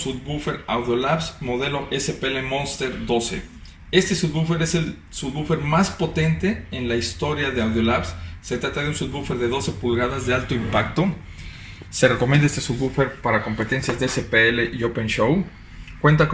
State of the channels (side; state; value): both; identical; correlation 1.00